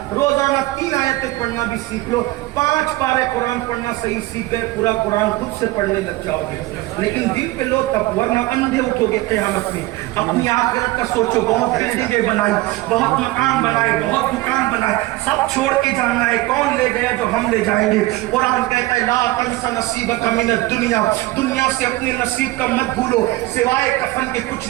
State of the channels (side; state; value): left; quieter; 18.9 dB